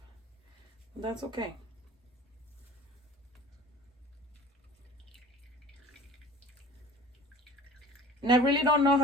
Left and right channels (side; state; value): both; normal; correlation 0.42